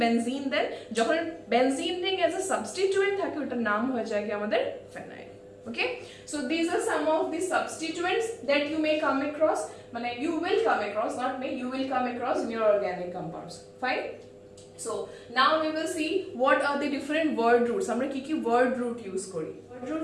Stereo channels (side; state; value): both; identical; correlation 1.00